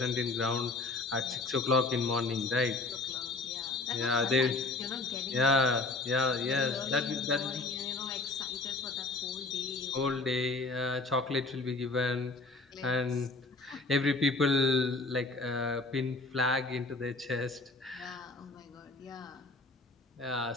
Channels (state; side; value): quieter; right; 3.4 dB